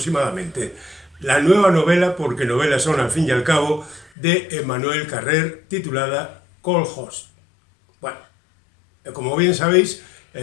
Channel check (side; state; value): right; drops out; at 4.1 s